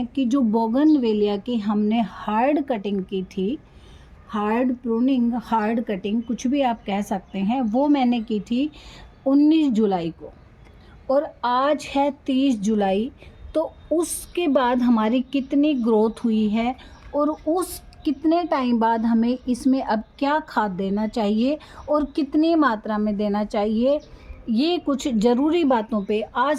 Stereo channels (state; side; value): identical; both; correlation 1.00